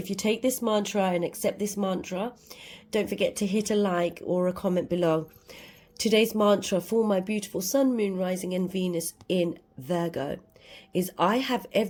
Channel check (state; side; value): identical; both; correlation 1.00